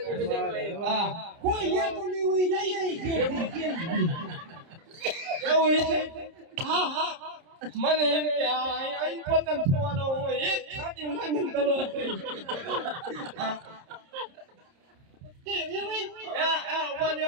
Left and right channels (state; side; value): late; left; 30 ms